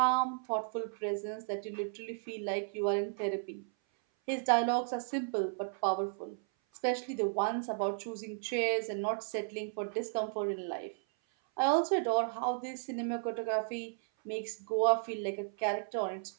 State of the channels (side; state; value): left; silent; 55 dB below the other